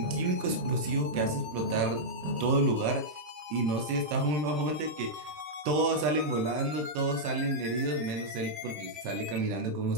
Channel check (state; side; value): late; left; 26 ms